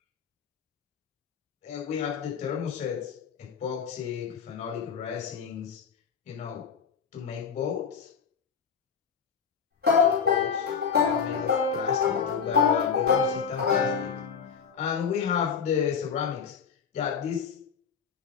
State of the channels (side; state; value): right; quieter; 6.6 dB